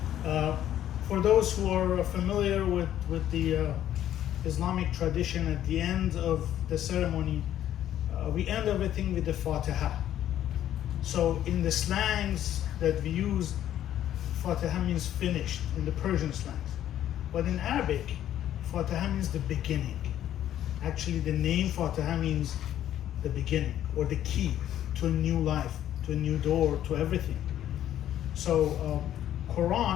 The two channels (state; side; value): quieter; right; 11.6 dB